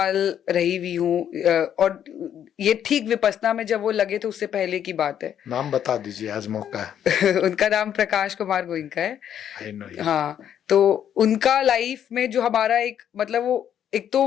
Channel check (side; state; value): right; quieter; 9.6 dB